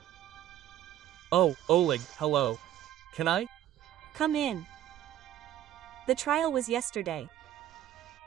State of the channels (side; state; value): left; quieter; 12.1 dB